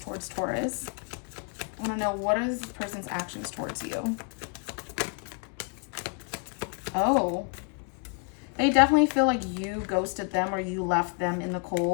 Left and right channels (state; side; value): quieter; right; 38.7 dB